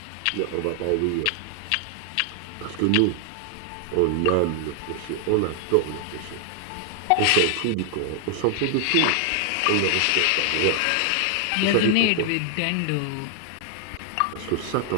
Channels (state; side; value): different; both; correlation 0.00